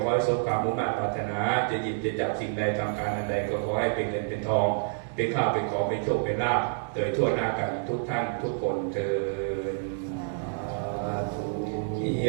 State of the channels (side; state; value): left; silent; digital silence